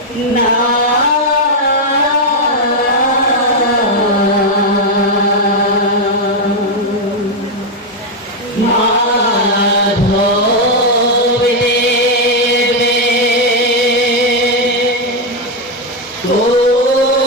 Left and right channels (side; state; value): both; normal; correlation 0.03